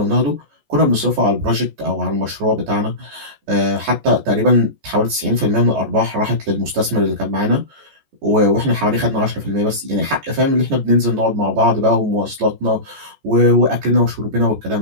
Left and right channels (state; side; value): late; left; 14 ms